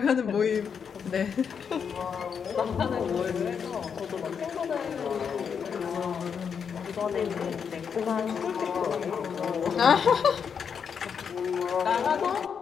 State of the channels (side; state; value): right; quieter; 6.8 dB